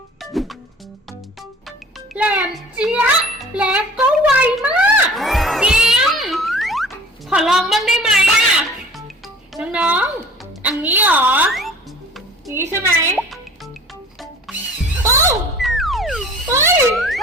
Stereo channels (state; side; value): normal; both; correlation 0.45